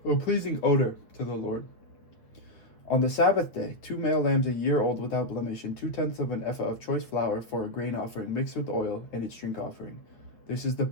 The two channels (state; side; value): late; right; 8.9 ms